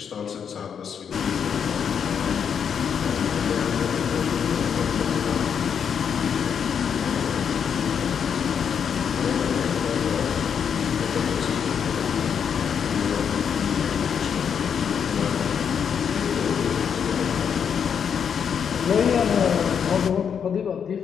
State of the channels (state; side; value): quieter; right; 7.4 dB